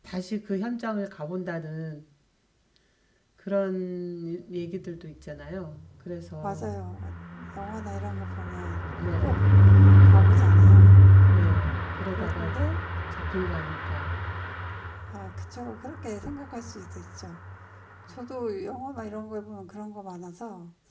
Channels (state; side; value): identical; both; correlation 1.00